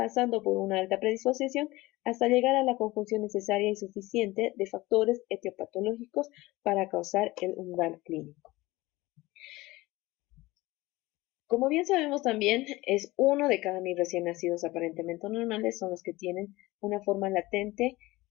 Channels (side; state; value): right; quieter; 19.9 dB